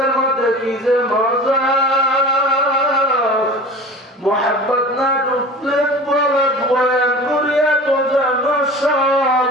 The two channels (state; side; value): normal; both; correlation 0.38